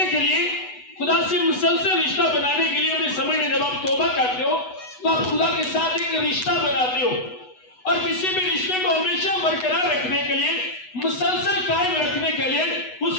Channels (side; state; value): right; late; 8.1 ms